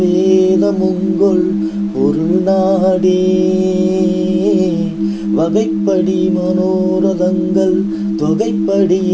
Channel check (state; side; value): identical; both; correlation 1.00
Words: வேதமுங்கொள் பொருள் நாடே. வகைப்படி மனோரதங்கள்